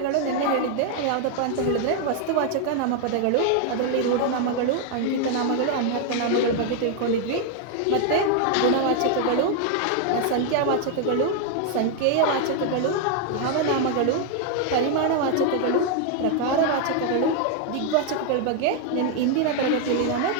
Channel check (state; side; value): different; both; correlation 0.00